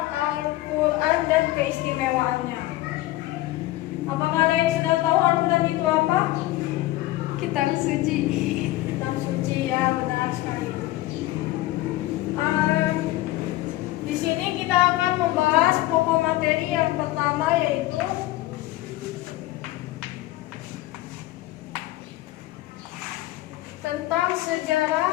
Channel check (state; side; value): quieter; right; 16.9 dB